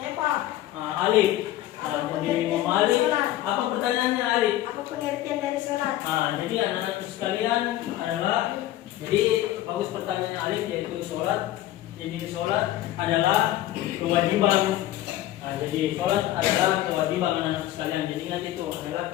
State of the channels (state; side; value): quieter; right; 14.3 dB